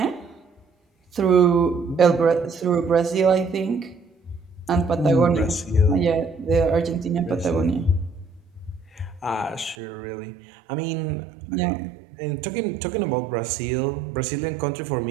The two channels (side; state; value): left; drops out; at 9.8 s